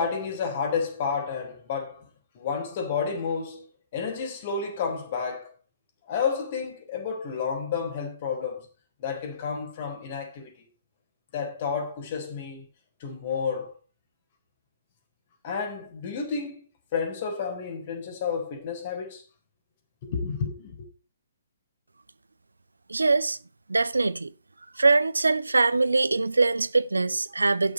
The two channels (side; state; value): both; inverted; correlation -0.75